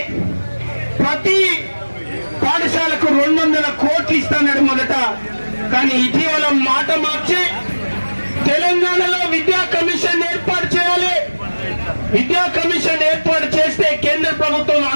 ప్రతి పాఠశాలకు 200 కోట్లు ఇస్తాడు మొదట. కానీ ఇటీవల మాట మార్చి తెలంగాణలో విద్యా కమిషన్ ఏర్పాటు చేయాలి, విద్యా కమిషన్ ఏర్పాటు చేస్తే కేంద్ర ప్రభుత్వం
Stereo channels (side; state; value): both; inverted; correlation -1.00